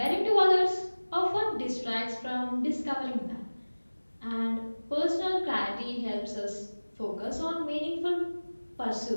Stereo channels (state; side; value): inverted; both; correlation -1.00